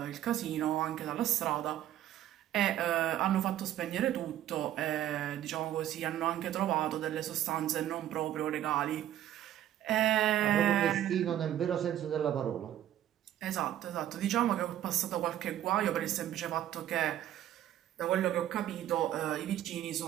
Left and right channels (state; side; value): quieter; left; 12.1 dB